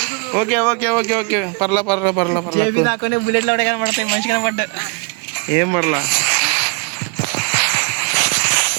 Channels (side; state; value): left; quieter; 34.5 dB